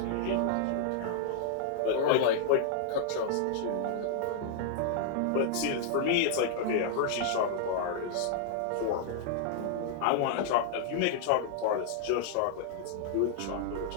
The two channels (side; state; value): both; different; correlation -0.01